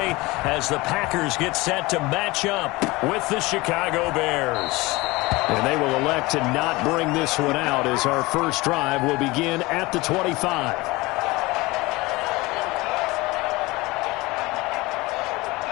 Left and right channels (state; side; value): quieter; right; 21.9 dB